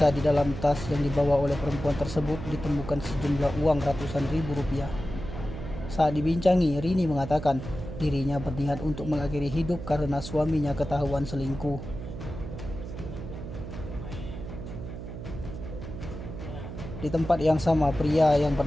di dalam tas yang dibawa oleh perempuan tersebut ditemukan sejumlah uang ratusan ribu rupiah. Saat dibincangi, Rini mengatakan dirinya berniat untuk mengakhiri hidup karena suaminya ketahuan selingkuh. Di tempat yang sama, pria yang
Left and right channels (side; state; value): right; noise; hum, 9 dB below the sound